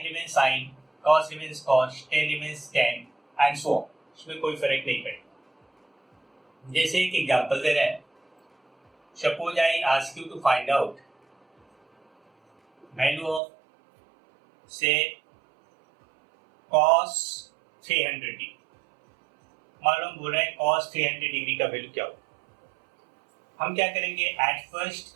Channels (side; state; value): left; drops out; at 13.4 s